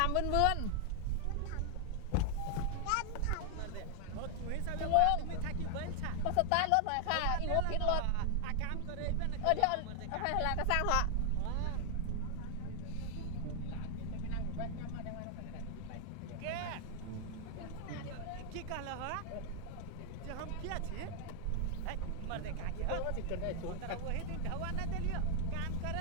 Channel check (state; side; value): different; both; correlation 0.00